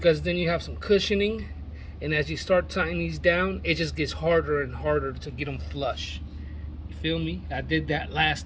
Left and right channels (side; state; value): both; identical; correlation 1.00